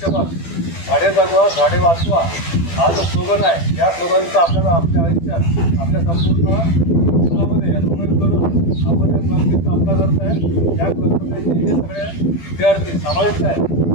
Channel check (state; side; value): late; right; 12 ms